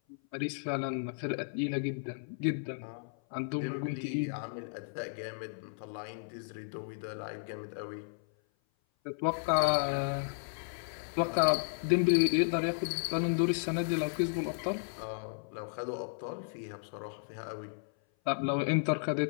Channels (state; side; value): silent; right; 55 dB below the other